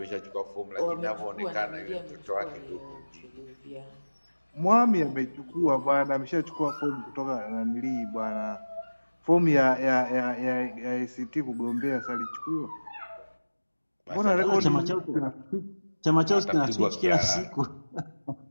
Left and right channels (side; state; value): both; inverted; correlation -1.00